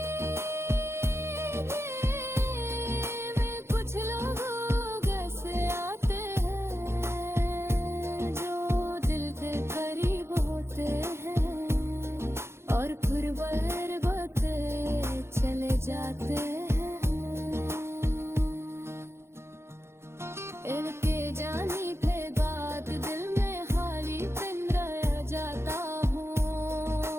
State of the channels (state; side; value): late; left; 0.12 ms